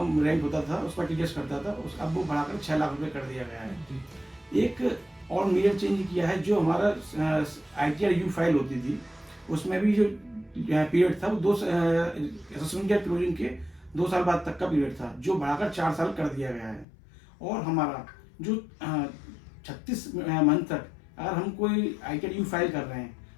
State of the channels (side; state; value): right; drops out; at 16.9 s